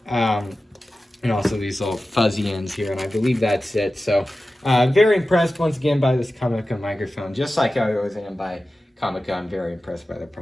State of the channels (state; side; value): normal; both; correlation 0.94